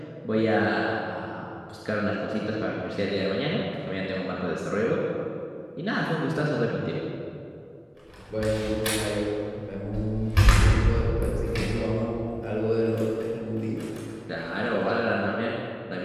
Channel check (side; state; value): both; identical; correlation 1.00